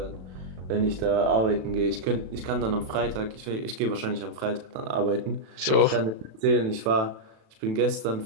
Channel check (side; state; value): left; late; 36 ms